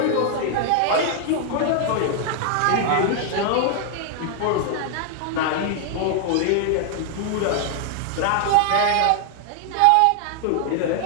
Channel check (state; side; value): different; both; correlation 0.00